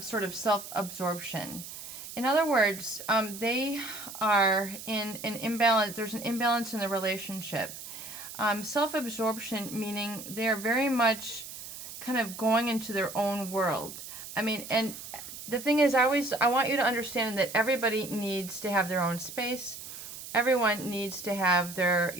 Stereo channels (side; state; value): right; noise; hiss, 11 dB below the sound